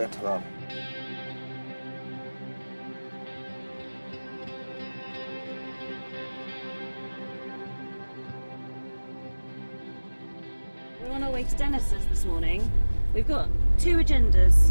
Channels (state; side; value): inverted; both; correlation -1.00